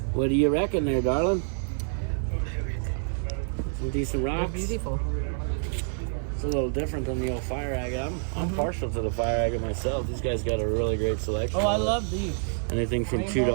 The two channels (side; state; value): left; silent; digital silence